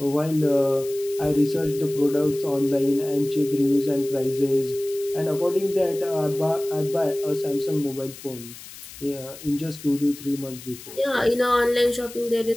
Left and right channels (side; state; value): left; noise; hiss, 16 dB below the sound